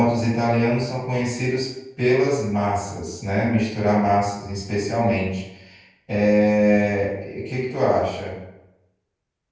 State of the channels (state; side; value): identical; both; correlation 1.00